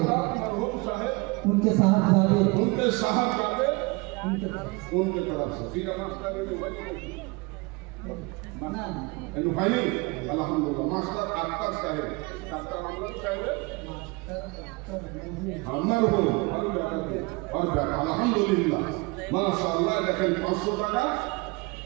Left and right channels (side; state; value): left; quieter; 26.5 dB